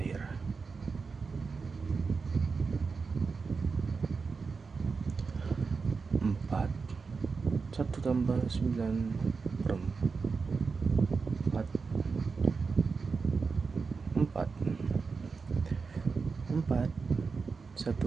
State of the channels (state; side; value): quieter; left; 4.8 dB